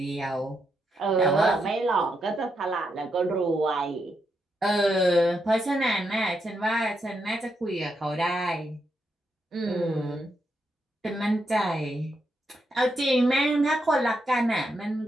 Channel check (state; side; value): normal; both; correlation 0.81